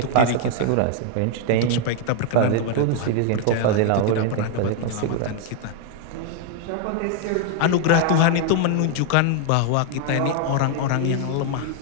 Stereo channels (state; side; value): different; both; correlation 0.00